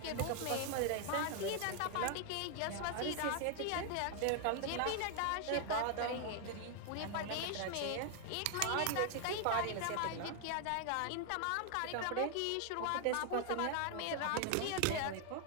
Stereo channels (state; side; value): different; both; correlation 0.00